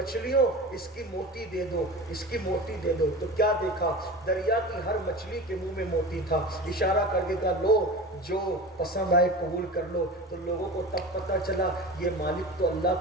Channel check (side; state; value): both; normal; correlation 0.31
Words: اس کی موتی دے دو، اس کی موتی دے دو۔ تو کیا دیکھا، دریا کی ہر مچھلی کے منہ میں موتی تھا۔ اشارہ کر کے کہا لو جو پسند آئے قبول کر لو۔ تو لوگوں کو تب پتہ چلا یہ مالک تو اللہ